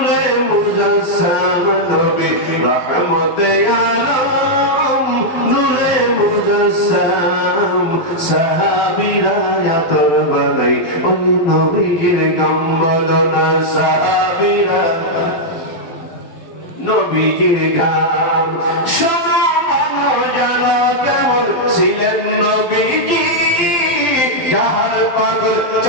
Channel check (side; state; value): right; late; 12 ms